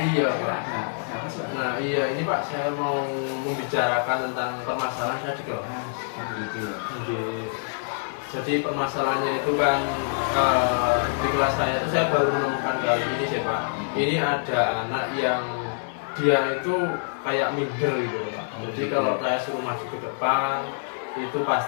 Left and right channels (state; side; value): silent; right; digital silence